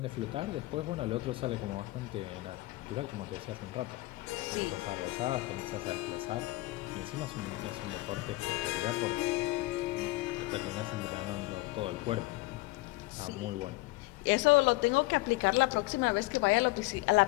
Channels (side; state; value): right; quieter; 20.4 dB